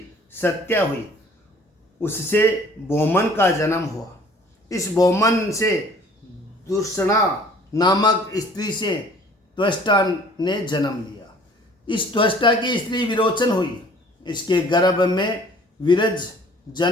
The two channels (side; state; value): both; normal; correlation 0.53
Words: सत्या हुई, उससे बोमन का जन्म हुआ। इस बोमन से दुर्षणा नामक स्त्री से त्वष्टा ने जन्म लिया। इस त्वष्टा की स्त्री विरोचन हुई, इसके गर्भ में विरज